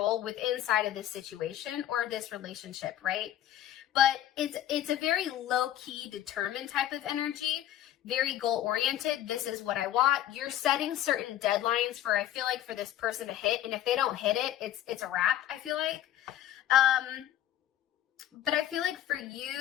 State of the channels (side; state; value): right; quieter; 12.4 dB